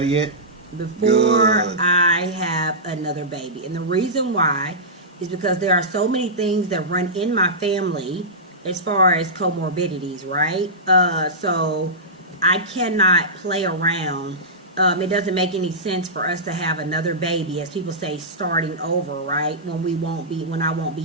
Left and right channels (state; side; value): normal; both; correlation -0.15